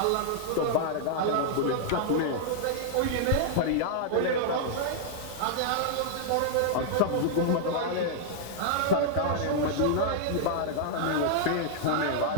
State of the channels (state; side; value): different; both; correlation -0.01